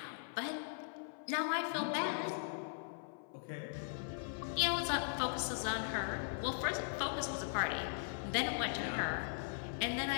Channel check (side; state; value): right; silent; 51 dB below the other